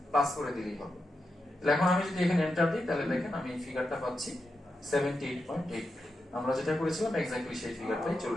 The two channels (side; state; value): both; normal; correlation 0.87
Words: প্লাস করে দিলেই হবে। তাহলে এখন আমি যদি এখানে এন্টার দিই তাহলে দেখেন আমি এই ফিগারটা পাচ্ছি 78.8, আমরা যেটা করেছিলাম এক্স্যাক্টলি সেই ফিগারটাই